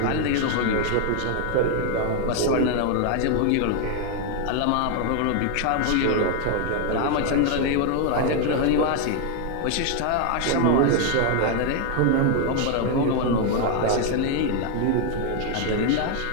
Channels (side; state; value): both; different; correlation 0.00